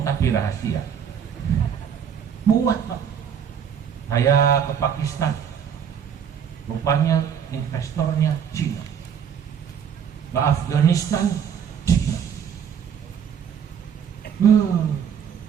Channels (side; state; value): left; quieter; 8.0 dB